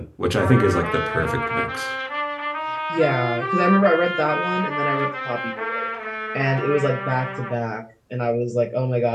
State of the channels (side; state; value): both; identical; correlation 1.00